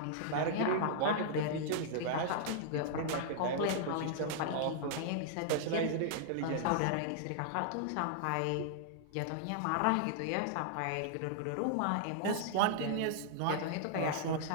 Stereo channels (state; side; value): different; both; correlation -0.01